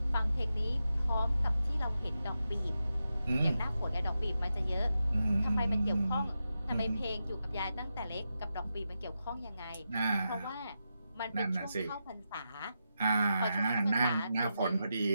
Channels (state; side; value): inverted; both; correlation -0.88